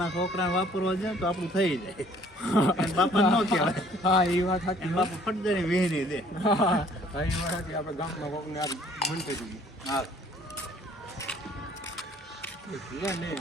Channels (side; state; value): both; normal; correlation 0.58